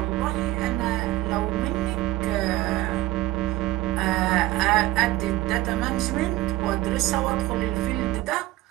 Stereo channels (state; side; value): quieter; left; 17.4 dB